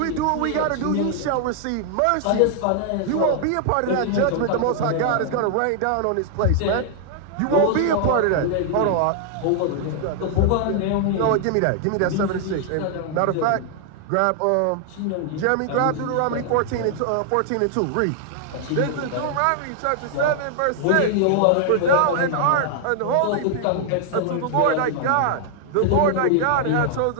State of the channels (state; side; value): different; both; correlation 0.00